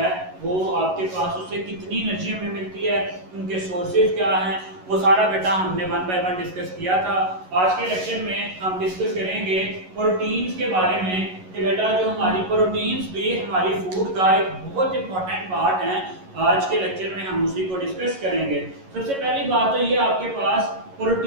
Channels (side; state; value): left; late; 11 ms